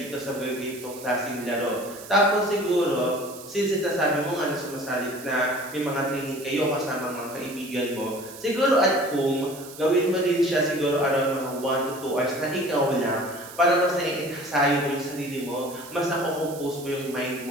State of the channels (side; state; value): right; noise; hiss, 16 dB below the sound